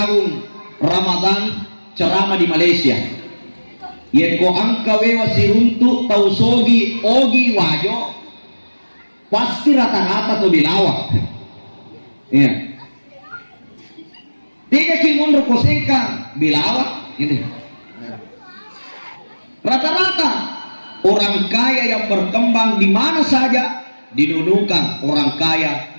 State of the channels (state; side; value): inverted; both; correlation -1.00